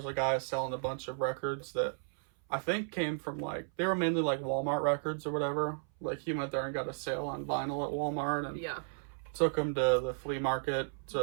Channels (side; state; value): left; silent; 55 dB below the other